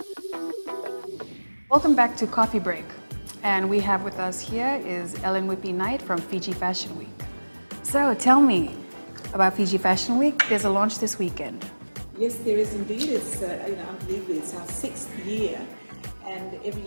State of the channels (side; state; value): both; inverted; correlation -1.00